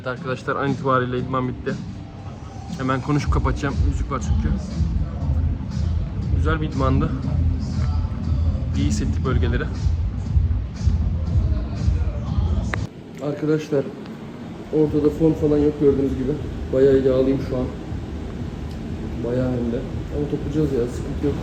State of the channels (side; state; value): both; identical; correlation 1.00